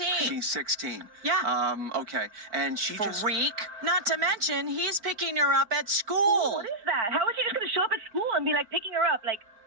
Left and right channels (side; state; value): left; late; 4.4 ms